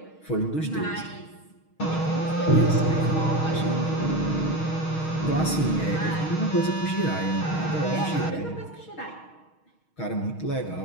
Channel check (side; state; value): right; late; 6.4 ms